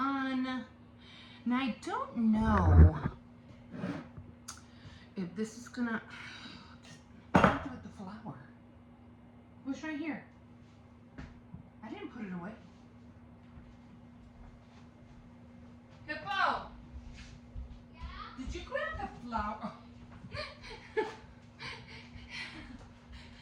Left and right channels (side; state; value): both; identical; correlation 1.00